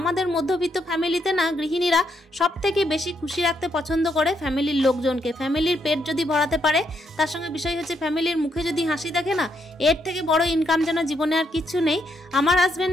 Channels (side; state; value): both; normal; correlation 0.76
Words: মধ্যবিত্ত ফ্যামিলিতে না গৃহিণীরা সব থেকে বেশি খুশি রাখতে পছন্দ করে ফ্যামিলির লোকজনকে। ফ্যামিলির পেট যদি ভরাতে পারে, তার সঙ্গে বিষয় হচ্ছে ফ্যামিলির মুখে যদি হাসি দেখে না, এর থেকে বড় ইনকাম যেন জীবনে আর কিচ্ছু নেই। আমার